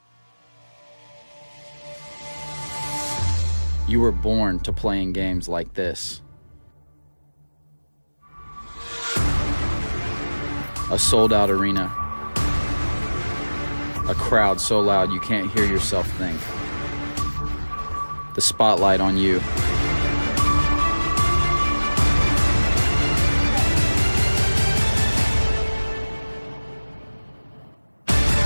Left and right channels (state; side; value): inverted; both; correlation -1.00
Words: You were born to play in games like this. A sold-out arena. A crowd so loud you can't hear yourself think. The spotlight on you.